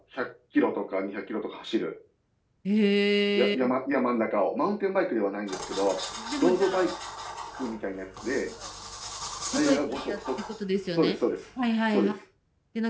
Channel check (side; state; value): both; identical; correlation 1.00